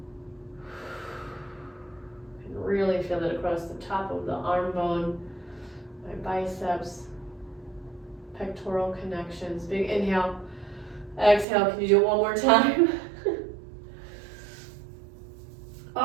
You can really feel it across the top of the arm bone, my biceps, pectoral connections. Big inhale. Exhale. Can you do it one more time?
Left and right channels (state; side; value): drops out; left; at 11.5 s